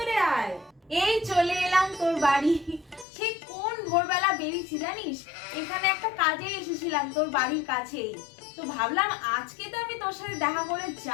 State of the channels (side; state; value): right; drops out; at 3.1 s